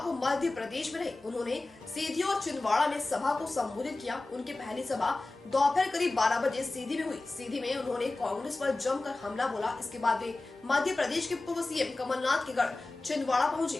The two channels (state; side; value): quieter; right; 3.1 dB